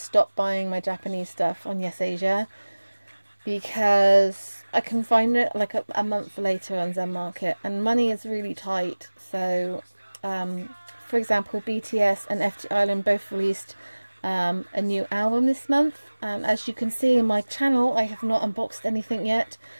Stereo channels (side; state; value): both; inverted; correlation -1.00